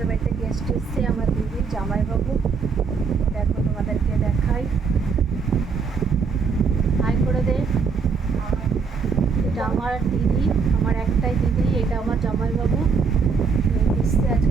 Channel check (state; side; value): quieter; left; 5.4 dB